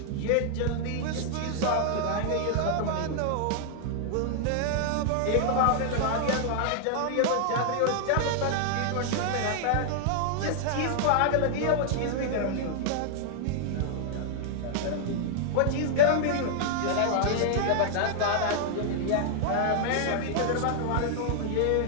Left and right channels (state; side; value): different; both; correlation -0.01